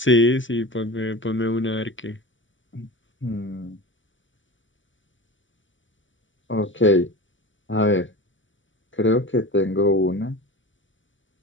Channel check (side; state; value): right; late; 0.55 ms